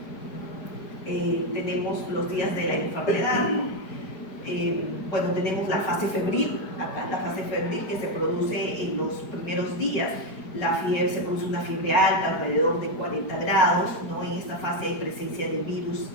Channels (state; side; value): late; right; 4.9 ms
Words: tenemos los días de la enfermedad. Bueno, tenemos la fase febril, acá la fase febril que se produce en los primeros días. Se produce una fiebre alta, alrededor de 40 grados, ¿no? En esta fase hay presencia de virus